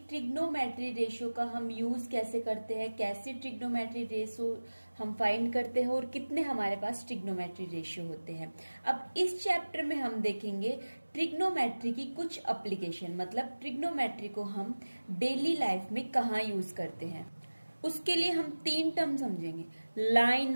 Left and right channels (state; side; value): inverted; both; correlation -1.00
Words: ट्रिग्नोमेट्री रेशियो का हम यूज कैसे करते हैं, कैसे ट्रिग्नोमेट्री रेशियो हम फाइंड करते हैं और कितने हमारे पास ट्रिग्नोमेट्री रेशियो होते हैं। अब इस चैप्टर में हम देखेंगे ट्रिग्नोमेट्री की कुछ एप्लीकेशन, मतलब ट्रिग्नोमेट्री को हम डेली लाइफ में कहाँ यूज करते हैं। उसके लिए हम तीन टर्म समझेंगे,